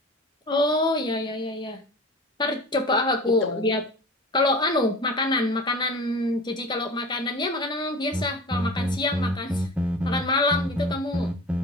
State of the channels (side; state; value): both; normal; correlation 0.36